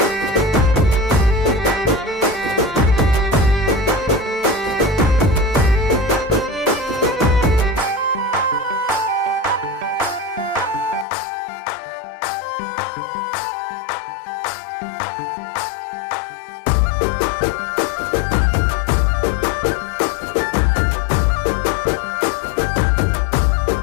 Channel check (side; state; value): right; drops out; at 11.1 s